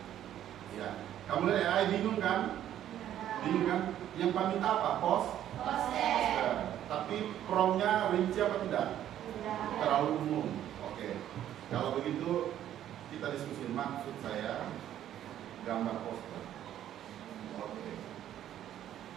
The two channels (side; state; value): left; quieter; 11.4 dB